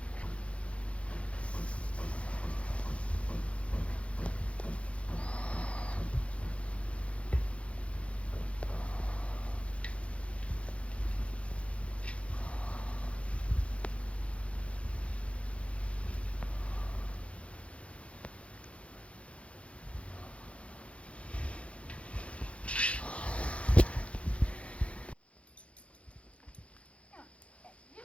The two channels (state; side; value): late; right; 0.062 ms